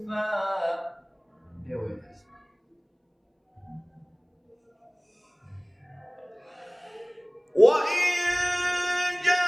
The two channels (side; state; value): both; identical; correlation 1.00